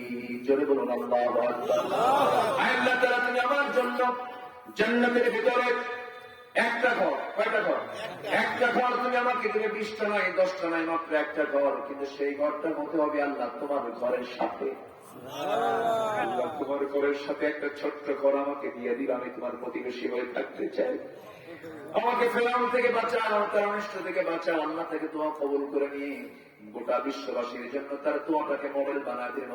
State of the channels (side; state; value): both; identical; correlation 1.00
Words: জোরে বলুন আল্লাহু আকবার। আল্লাহ তাআলা তুমি আমার জন্য জান্নাতের ভিতরে একটা ঘর, কয়টা ঘর? একটা ঘর তুমি আমাকে দিলে, 20টা নয় 10টা নয়, মাত্র একটা ঘর। কিন্তু সেই ঘরটার মধ্যে হবে আল্লাহ তোমার ঘরের সাথে। আল্লাহ তোমার ঘরের সাথে একটা ছোট্ট ঘর আমাকে দিয়ে দিল, আমি তোমার প্রতিবেশী হয়ে থাকতে চাই। আমাকে ফেরাউন থেকে বাঁচাও, তার অনিষ্ট থেকে বাঁচাও। আল্লাহ থেকে দোয়া কবুল করে নিয়ে গোটা বিশ্ববাসীর জন্য তার দোয়াটাকে মডেল বানায় দিলেন।